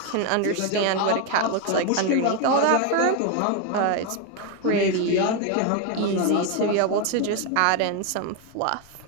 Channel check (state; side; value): different; both; correlation 0.01